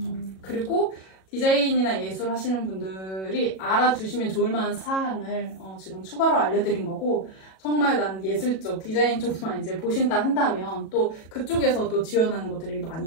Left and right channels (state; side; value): late; right; 37 ms